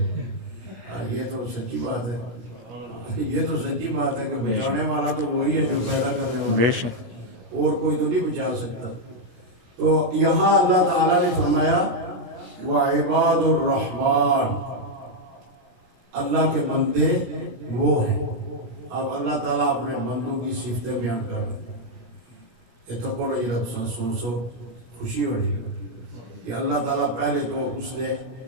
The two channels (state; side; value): late; left; 17 ms